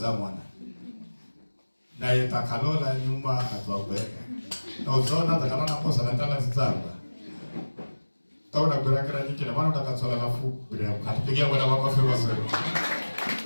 mwana. Na yetakalola nyuma atwabeka. Na uzona takalona posa na tala zitanga. Tauna kurakira nyingine maana utakatsola nafu bila kupigia Bwana makofi mazuri.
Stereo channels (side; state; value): both; inverted; correlation -1.00